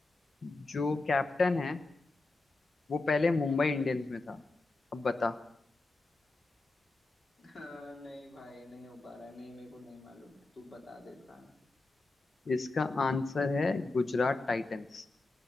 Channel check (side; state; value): right; quieter; 3.3 dB